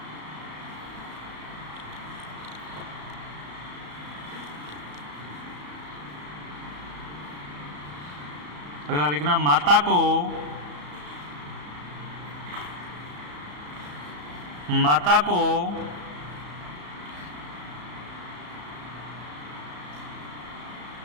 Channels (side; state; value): left; late; 34 ms